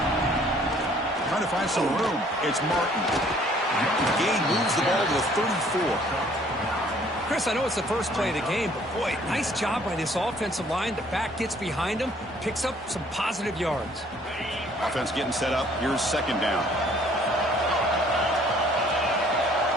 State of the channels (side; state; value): both; normal; correlation 0.59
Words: Find some room. It's Martin. Gain moves the ball to the 34. Chris, I know it's the first play of the game, but boy, nice job by this offensive line. The back gets behind him, picks up some positive yards. Offense getting set up. Here's second down.